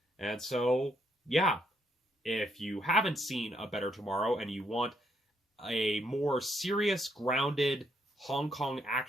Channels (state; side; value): normal; both; correlation 0.74